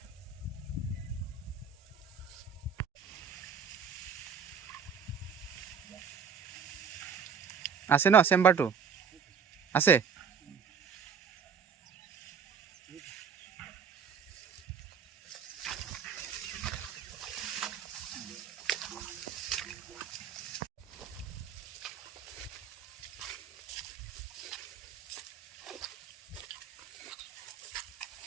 আছে ন চেম্বাৰটো আছে?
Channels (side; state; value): left; quieter; 6.7 dB